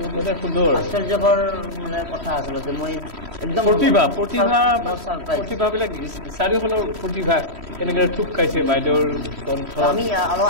মানে সুন্দৰ আশ্চৰ্যকৰ মানে কথা আচলতে মই একদম প্ৰতিভাবিলাক চাৰিওফালৰ প্ৰতিভা কেনেকৈ থুপ খাইছে বাইদেউৰ কণ্ঠ আমি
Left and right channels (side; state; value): left; late; 3.1 ms